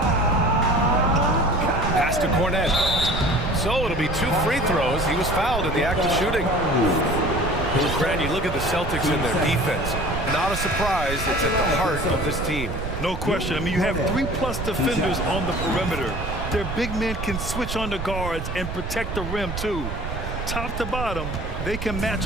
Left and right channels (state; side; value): noise; right; rumble, 5 dB below the sound